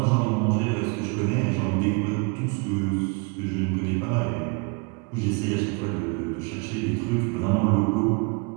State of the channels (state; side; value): quieter; left; 31.6 dB